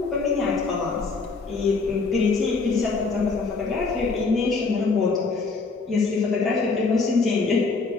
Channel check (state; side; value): quieter; right; 4.2 dB